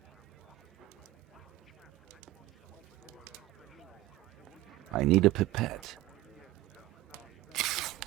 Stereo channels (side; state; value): left; quieter; 17.1 dB